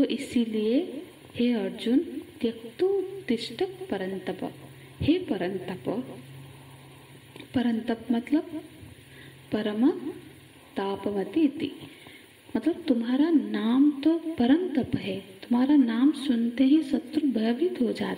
इसीलिए हे अर्जुन, त्यक्तु तिष्ठ परंतप, हे परंतप, परंतप मतलब परम तापमति इति, मतलब तुम्हारा नाम तो परंतप है। तुम्हारा नाम सुनते ही शत्रु भयभीत हो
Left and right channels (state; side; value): identical; both; correlation 1.00